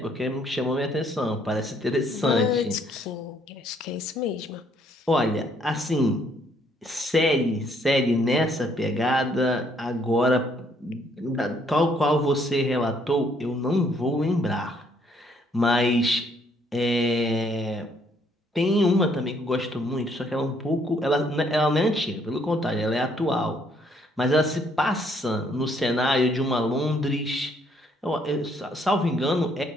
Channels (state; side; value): normal; both; correlation 0.67